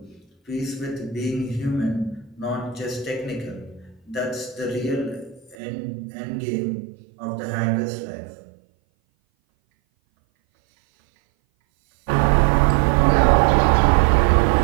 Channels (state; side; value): drops out; left; at 5.6 s